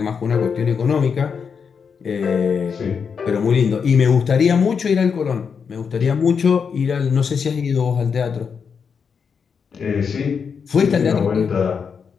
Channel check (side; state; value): right; quieter; 6.2 dB